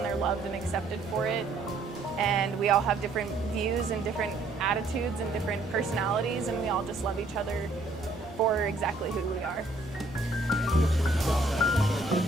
they're loved and accepted for it. And we all have different views and different attitudes and different personalities, and we all just love each other for exactly who we are.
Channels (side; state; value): left; quieter; 3.1 dB